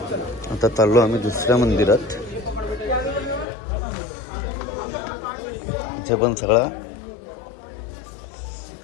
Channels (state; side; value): drops out; right; at 3.5 s